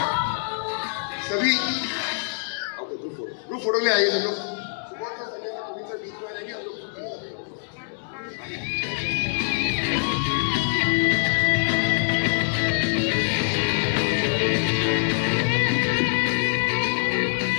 सभी ग्रुप फोटो ले आइए सब लोग। बीच में आ जाएंगे हम लोग।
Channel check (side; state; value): right; silent; digital silence